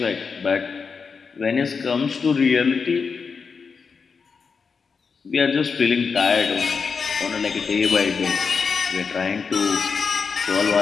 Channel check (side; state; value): right; quieter; 5.4 dB